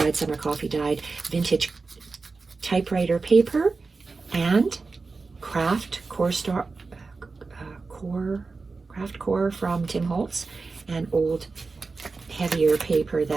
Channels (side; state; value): left; quieter; 4.1 dB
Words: some are coffee-dyed, vintage typewriter paper and craft core from Tim Holtz, and old heavier paper